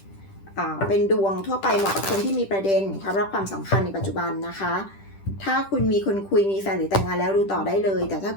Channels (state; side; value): late; right; 10 ms